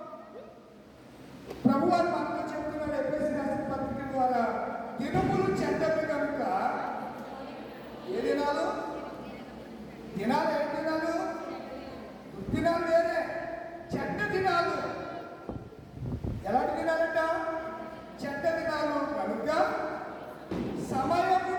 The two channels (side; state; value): both; identical; correlation 1.00